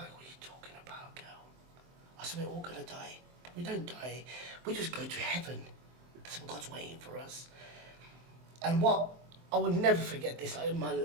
what are you talking about, girl? I said, we're all going to die. But we don't die. We just go to heaven. That's what God's waiting for us. And what, I will never forget this. Like, in my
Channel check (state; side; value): late; left; 23 ms